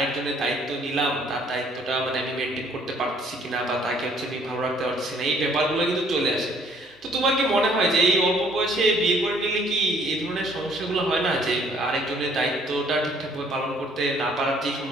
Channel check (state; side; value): normal; both; correlation 0.61